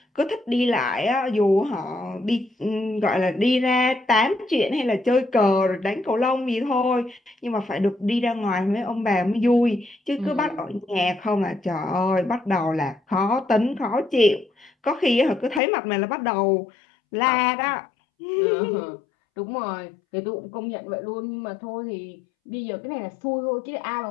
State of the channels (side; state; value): right; drops out; at 15.6 s